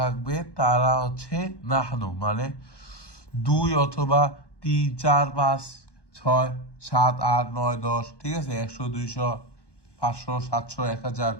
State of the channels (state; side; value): late; right; 1.2 ms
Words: তারা হচ্ছে নাহনু, মানে দুই অথবা তিন, চার, পাঁচ, ছয়, সাত, আট, নয়, দশ, ঠিক আছে? 100, 200, 500, 700, 1000,